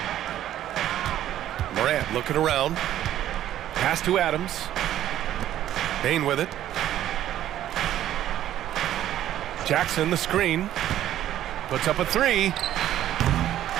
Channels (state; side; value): quieter; left; 12.2 dB